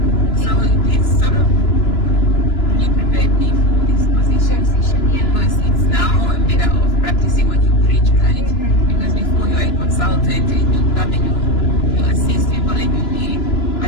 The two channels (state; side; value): late; right; 2.9 ms